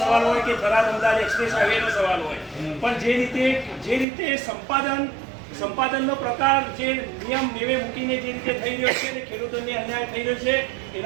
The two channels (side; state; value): left; drops out; at 4.0 s